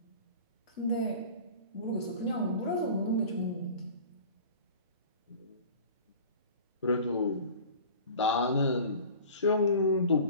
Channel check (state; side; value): inverted; both; correlation -0.41